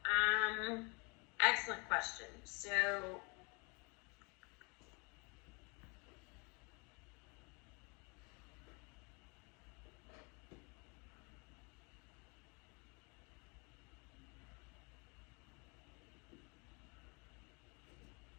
excellent question. So,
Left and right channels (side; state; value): right; quieter; 31.1 dB